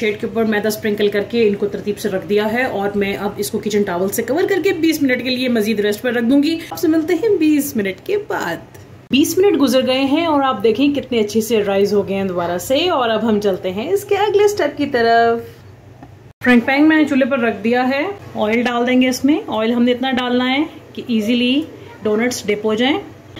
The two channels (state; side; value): identical; both; correlation 1.00